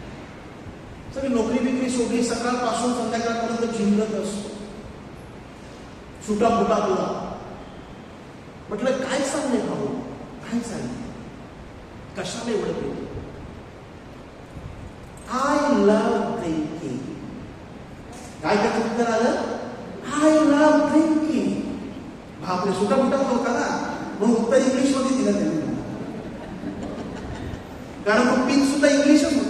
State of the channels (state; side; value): identical; both; correlation 1.00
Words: सगळी नोकरी बिकरी सोडली, सकाळपासून संध्याकाळपर्यंत झिंगत असतो, सुटा फुटा तुला. म्हटलं काय चाललंय भाऊ, काय चाललंय, कशाला एवढं पेलं? I love drinking. काय त्याचं उत्तर आलं? I love drinking. बापरे, सुटा फुटा होता ना, म्हणून उत्तर इंग्लिश मध्ये दिलं त्यांनी, कारण तो पिन सुद्धा इंग्लिशच